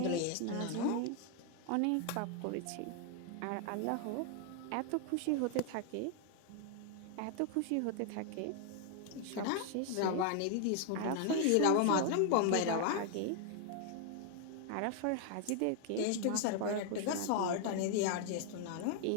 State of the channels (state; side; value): different; both; correlation 0.00